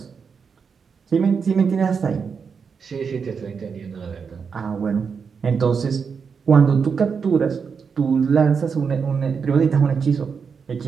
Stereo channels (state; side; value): quieter; left; 6.0 dB